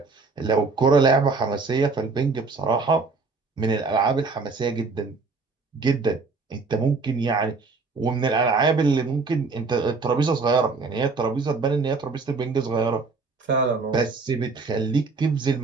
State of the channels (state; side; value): quieter; left; 4.2 dB